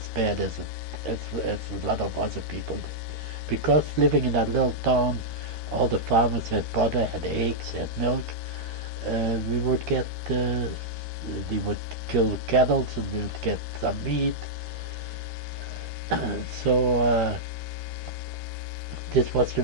bad as a lot of other people did. Because living in that little town, all the farmers had butter, had eggs, had milk. We would get, they would kill cattle, and we would get some meat. So this was the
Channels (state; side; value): late; left; 13 ms